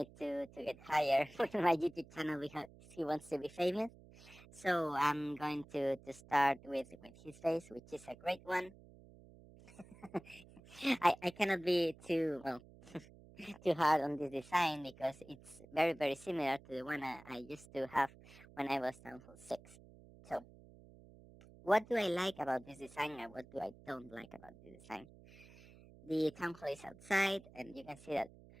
to get higher with my YouTube channel because he wants to be famous. So I'm going to start with his face, which is a great one. I cannot be too well too hard on this design because it's very similar to the one I used to have when I was Town Hall 6. So what do I like about this design and what do I don't like about this design? The Town Hall is outside and you can see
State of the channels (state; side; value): noise; right; hum, 21 dB below the sound